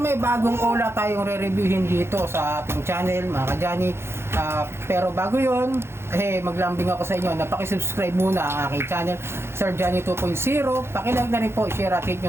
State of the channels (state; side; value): late; left; 0.12 ms